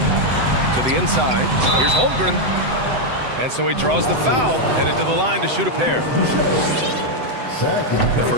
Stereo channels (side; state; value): left; late; 7.9 ms